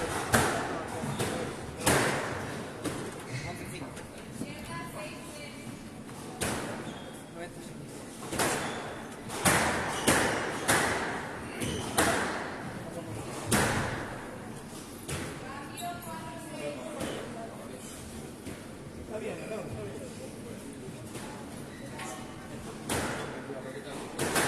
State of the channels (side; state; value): both; identical; correlation 1.00